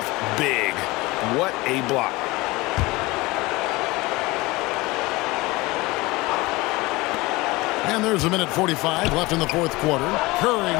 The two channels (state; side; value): quieter; right; 21.9 dB